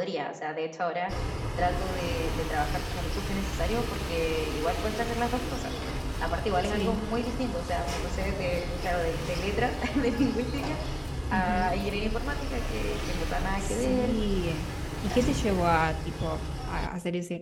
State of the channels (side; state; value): both; identical; correlation 1.00